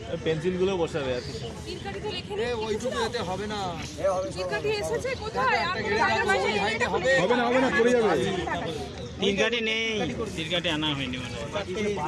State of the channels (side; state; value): both; identical; correlation 1.00